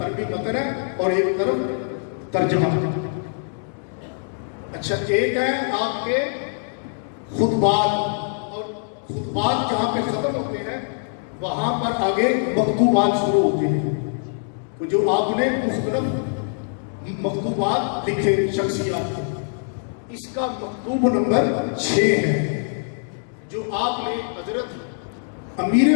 عربی متن ہے اور ایک طرف ترجمہ۔ اچھا، ایک ہے آپ کے خطبات، اور خطبات جہاں پہ ختم ہوتے ہیں وہاں پر آگے مکتوبات شروع ہوتے ہیں، جو آپ نے مختلف مکتوبات لکھے شخصیات کے۔ اس کا مکتوب نمبر 6 ہے، جو آپ نے حضرت امیر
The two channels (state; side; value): silent; right; 63 dB below the other